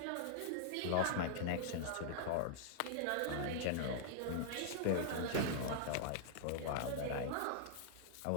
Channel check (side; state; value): both; different; correlation -0.01